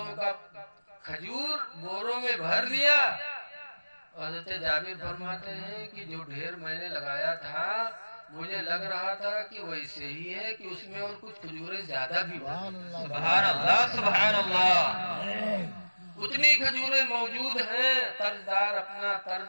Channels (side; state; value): both; inverted; correlation -1.00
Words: کا کھجور بوروں میں بھر لیا. حضرت جابر فرماتے ہیں کہ جو ڈھیر میں نے لگایا تھا مجھے لگ رہا تھا کہ ویسے ہی ہے کہ اس میں اور کچھ کھجوریں زیادہ بھی سبحان اللہ سبحان اللہ. اتنی کھجوریں موجود ہیں. قرضدار اپنا